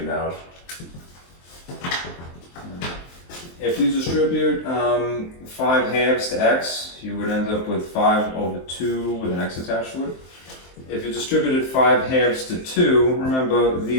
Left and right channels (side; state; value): right; late; 23 ms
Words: it out. If you distribute 5 halves to x, you would end up with 5 over 2 with an x attached to it. If you distributed 5 halves to 2, remember